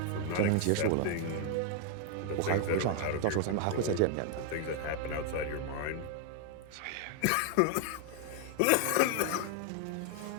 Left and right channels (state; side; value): different; both; correlation 0.00